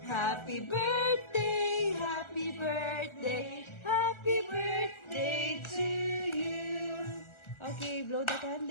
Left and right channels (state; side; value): late; right; 1.4 ms